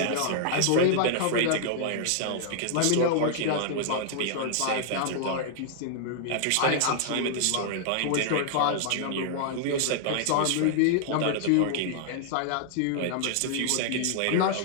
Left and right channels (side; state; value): both; different; correlation -0.01